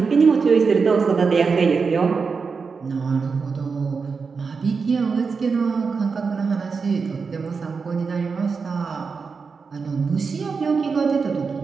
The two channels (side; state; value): left; quieter; 5.1 dB